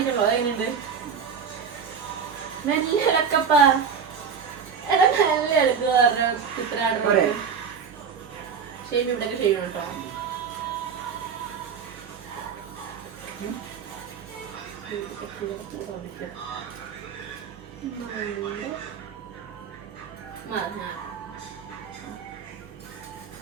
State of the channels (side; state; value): left; quieter; 6.5 dB